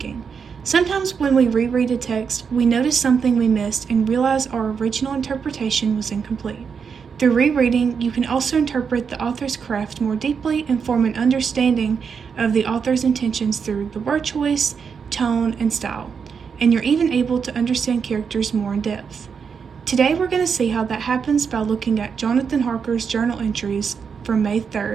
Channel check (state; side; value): quieter; left; 6.3 dB